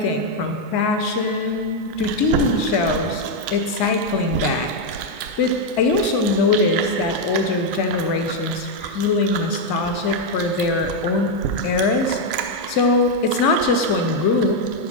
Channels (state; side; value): late; right; 2.2 ms